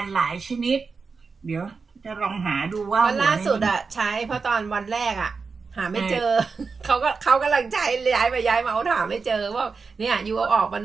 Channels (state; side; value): quieter; left; 4.8 dB